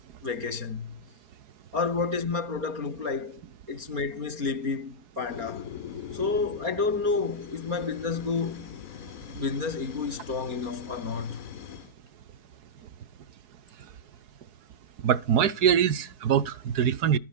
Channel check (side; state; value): left; late; 4.7 ms